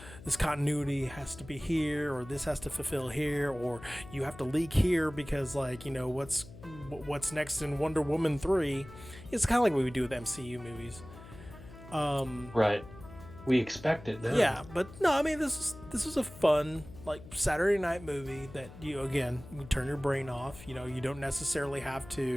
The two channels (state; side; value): noise; left; hum, 17 dB below the sound